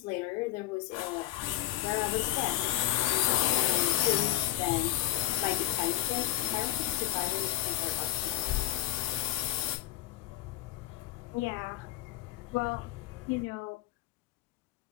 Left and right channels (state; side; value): quieter; right; 14.0 dB